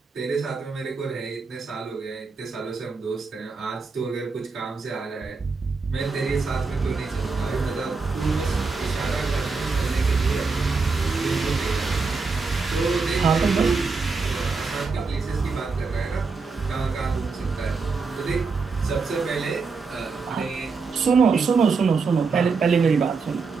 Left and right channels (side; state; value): left; quieter; 4.5 dB